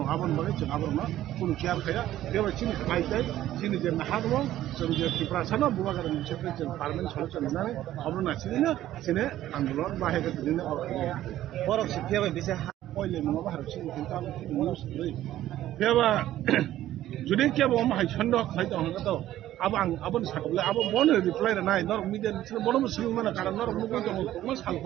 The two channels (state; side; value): quieter; left; 13.4 dB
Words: आबन बागै जों आबन मा कुनु केयार खाया बेबाय चिनि खाइदै चिनि जे नाहादो जों जे टिप्रासानो बुवागार मोनसे जों पार्मानेन्ट सलुसन होनानै अब्रना चिनिनो चिने आन्दोलन बाहेगा दिनो borok se pia ba bisa पहिले नङा बाहेर चिनि ताम निउस दै बेबा जुदि केबो मा हाइ छन्द खाइदा हंगातो अब आं आबन साकबले अब बन रिप्लाई नाय नर मिडिया निसिन बन सिल माने कारण नर मुगै दङ मा